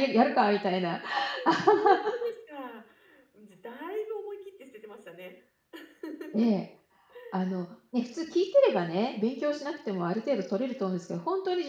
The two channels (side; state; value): both; identical; correlation 1.00